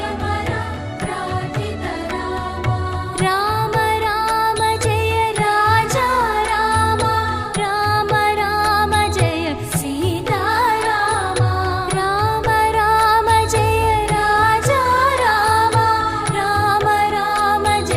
प्रार्थित रामा राम राम जय राजा रामा राम राम जय सीता रामा राम राम जय राजा रामा राम राम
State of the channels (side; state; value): both; identical; correlation 1.00